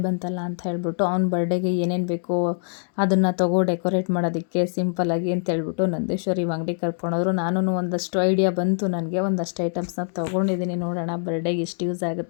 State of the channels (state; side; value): silent; right; 57 dB below the other